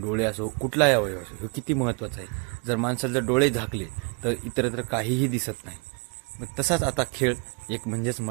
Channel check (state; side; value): quieter; left; 34.3 dB